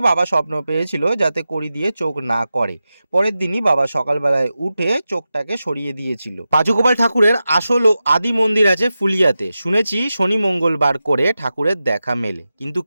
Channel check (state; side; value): inverted; both; correlation -0.92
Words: বাবা স্বপ্ন পেয়েছিল যাতে কড়ি দিয়ে চোখ না করে। পরের দিনই বাবা সকালবেলায় উঠে চোখটাকে সরিয়ে দিয়েছিল। পাঁচুগোপাল ঠাকুরের আসল ও আদি মন্দির আছে ফুলিয়াতে। শুনেছি শনি মঙ্গলবার করে ঠাকুরের দেখা মেলে, কিন্তু